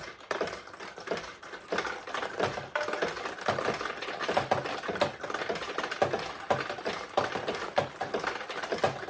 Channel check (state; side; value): identical; both; correlation 1.00